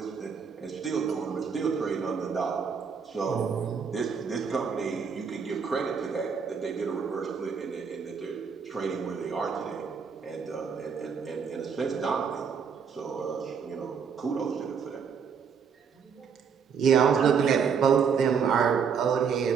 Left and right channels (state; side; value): quieter; left; 6.5 dB